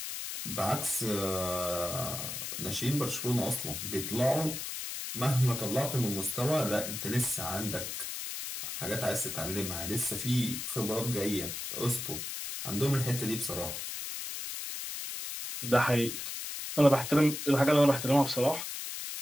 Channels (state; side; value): noise; left; hiss, 6 dB below the sound